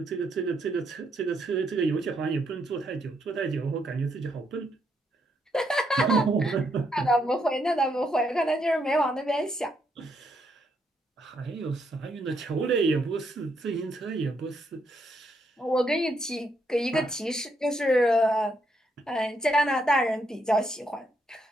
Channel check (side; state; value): both; normal; correlation 0.76